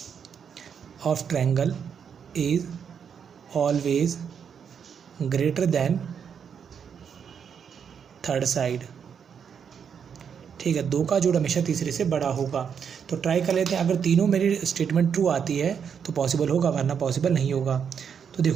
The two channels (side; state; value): left; quieter; 7.3 dB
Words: of triangle is always greater than third side. ठीक है, दो का जोड़ हमेशा तीसरे से बड़ा होगा। तो ट्राई कर लेते हैं, अगर तीनों मेरी स्टेटमेंट ट्रू आती है तो पॉसिबल होगा, वरना पॉसिबल नहीं होगा। तो